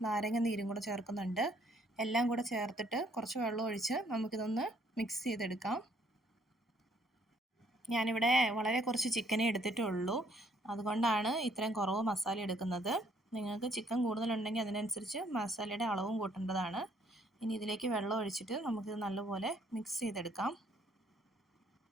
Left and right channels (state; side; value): normal; both; correlation 0.65